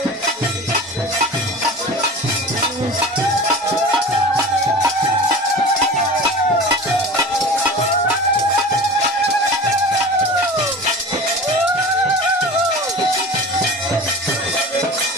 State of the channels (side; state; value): both; normal; correlation 0.36